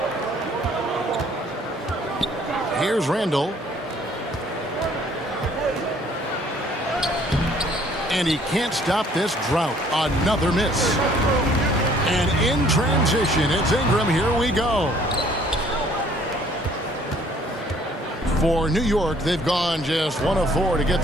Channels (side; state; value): both; normal; correlation 0.59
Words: Here's Randall. And he can't stop this drought. Another miss. And in transition, it's Ingram. Here we go. For New York, they've gone just 1 of 4 to get